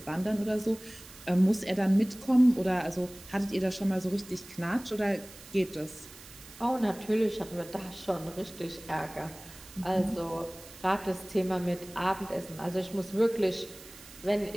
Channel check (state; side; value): noise; right; hiss, 18 dB below the sound